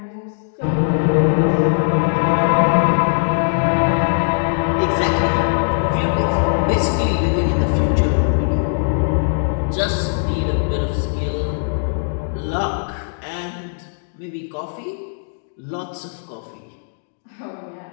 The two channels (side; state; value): right; silent; digital silence